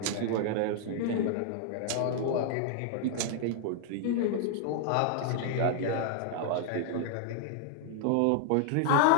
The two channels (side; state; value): both; different; correlation 0.00